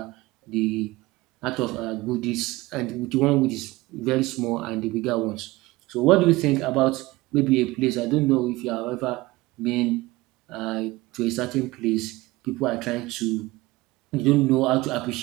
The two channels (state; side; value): quieter; left; 20.3 dB